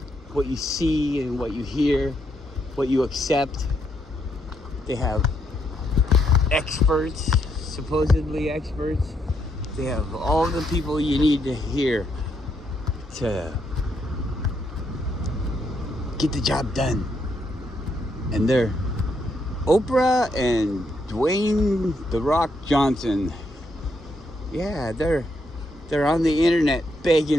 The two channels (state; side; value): normal; both; correlation 0.77